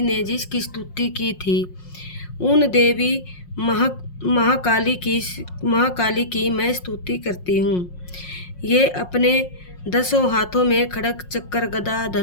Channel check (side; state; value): right; late; 5.6 ms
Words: ने जिसकी स्तुति की थी, उन देवी महाकाली की मैं स्तुति करती हूँ। ये अपने 10 हाथों में खड़ग चक्र गदा